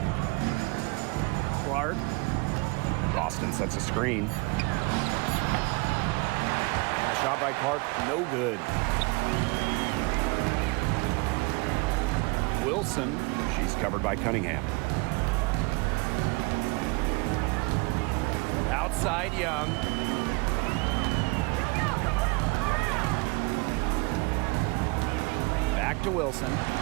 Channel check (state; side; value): quieter; left; 27.7 dB